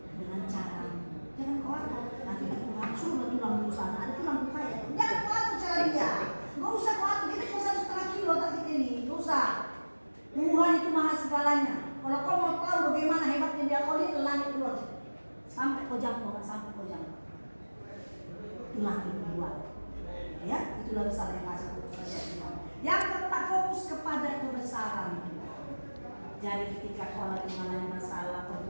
dengan cara. Jangan khawatir. Nanti Tuhan suruh tulang di sana. Ada tulang kaya. Jangan khawatir cara dia. Gak usah khawatir. Kita cuma 1,5 kilo tak kita ini. Gak usah. Tuhan itu maha segalanya. Kalau kau mau tahu bagaimana hebatnya dia, kau lihat langit keluar. Sampai kau jangkau, sampai kau jangkau. Itulah kebuat. Ya, itulah besar yang kasih Tuhan. Yang keempat, fokus kepada kebesaran. Jadi ketika kau lagi mengalami masalah,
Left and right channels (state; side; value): inverted; both; correlation -1.00